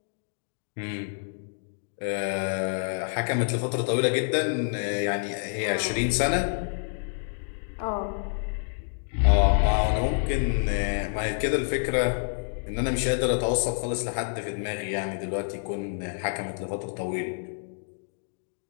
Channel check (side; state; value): right; silent; digital silence